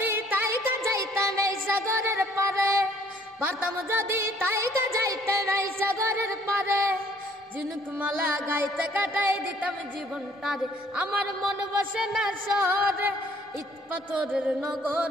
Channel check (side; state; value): both; normal; correlation 0.61